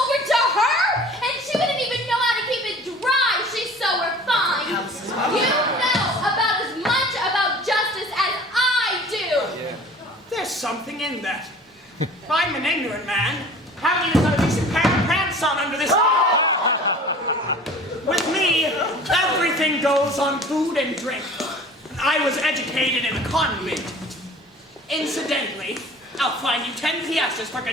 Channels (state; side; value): normal; both; correlation 0.44